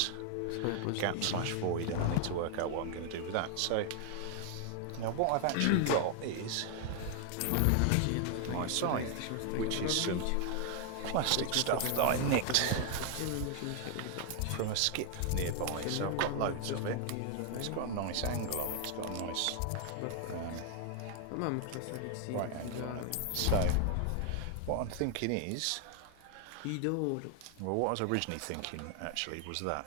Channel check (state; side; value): different; both; correlation 0.00